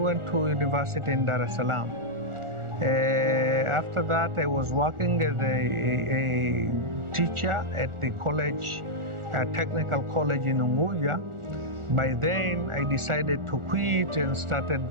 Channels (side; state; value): left; late; 1.4 ms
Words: to university in Dar es Salaam. After that, I was working as a teacher at the college, technical college in Unguja. By then, I decided to quit and